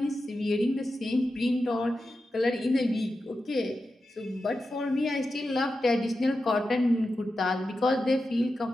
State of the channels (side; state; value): both; normal; correlation 0.91